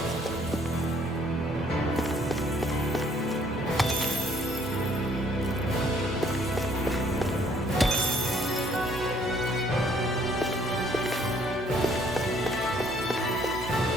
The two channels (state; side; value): normal; both; correlation 0.63